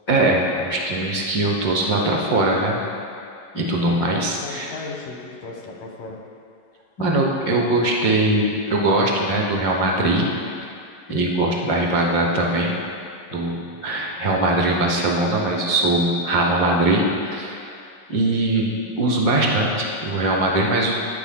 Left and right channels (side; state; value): right; late; 11 ms